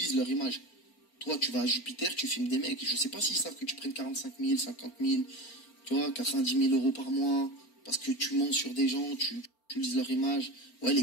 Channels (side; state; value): right; late; 4.4 ms